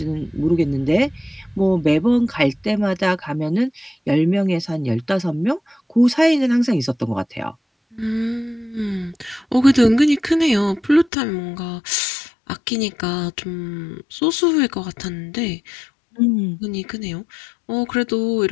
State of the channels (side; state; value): right; drops out; at 11.1 s